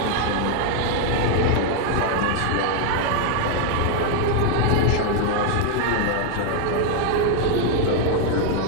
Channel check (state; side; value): different; both; correlation 0.00